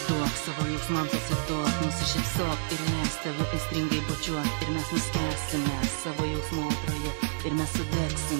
savo jausmams atsiduok, nusišypsok ir leis tave aistringai bučiuot. Ir mes nuskęsime savo jausmų audroje, ir mes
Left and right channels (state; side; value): silent; left; 59 dB below the other